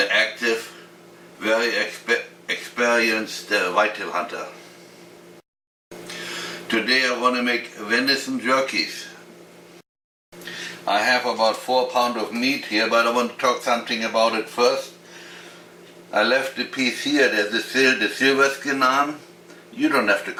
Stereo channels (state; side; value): identical; both; correlation 1.00